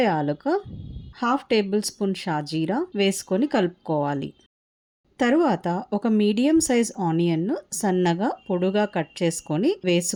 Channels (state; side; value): identical; both; correlation 1.00